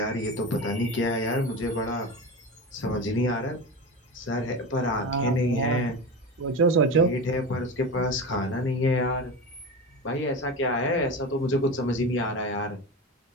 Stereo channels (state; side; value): normal; both; correlation 0.25